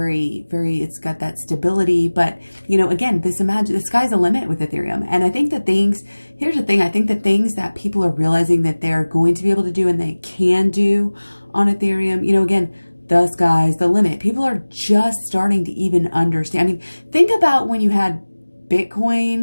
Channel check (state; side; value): inverted; both; correlation -1.00